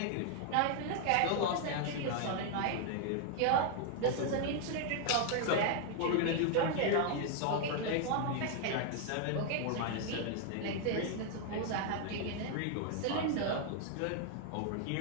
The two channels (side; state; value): both; different; correlation 0.00